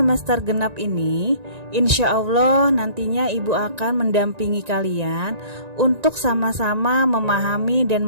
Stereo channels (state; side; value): late; left; 1.9 ms